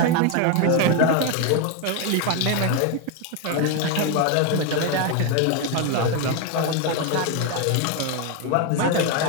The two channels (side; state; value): both; different; correlation 0.02